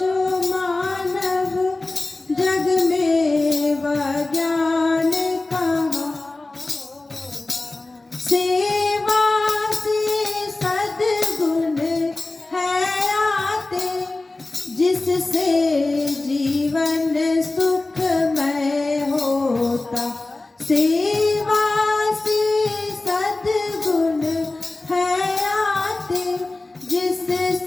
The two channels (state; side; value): quieter; right; 3.1 dB